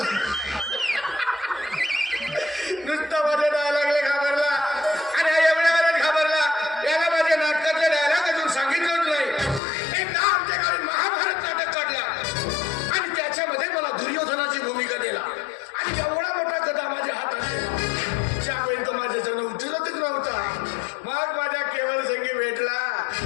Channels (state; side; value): drops out; right; at 9.6 s